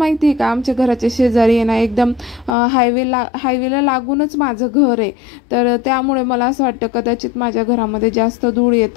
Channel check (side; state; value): right; drops out; at 2.6 s